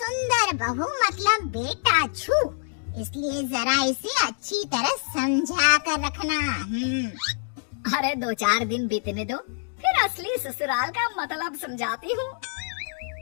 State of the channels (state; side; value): silent; right; digital silence